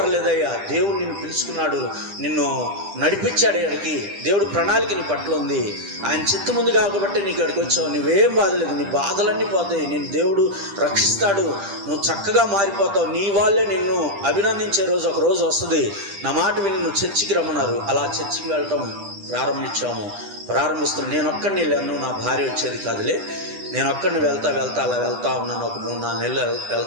దేవుడు నిన్ను పిలుచుకున్నాడు, నిన్ను నడిపించాడు అక్కడికి, దేవుడు ప్రణాళిక నీ పట్ల ఉంది, ఆయన చిత్తం ఉంది కాబట్టి నీకు అక్కడికి వచ్చావు. నువ్వేం బాధలేదు, నీ బాధలన్నీ పోతాయి, నిన్ను దేవుడు రక్షిస్తాడు, నువ్వు చక్కగా మారిపోతావు, నీ వాళ్ళే నిన్ను అభినందించే రోజు ఒక రోజు వస్తుంది, నా మాట విని నువ్వు చర్చికి రమ్మన్నారు. అలా చర్చికి వెళ్ళటం ప్రారంభిస్తున్నాను. నేను ఒక్కడిని వెళ్ళాను, నా భార్య వచ్చేది కాదులే, నేను ఒక్కడిని అలా వెళ్తా ఉన్నాను. ఒక 3-4 నెలలు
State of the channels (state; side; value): late; left; 10 ms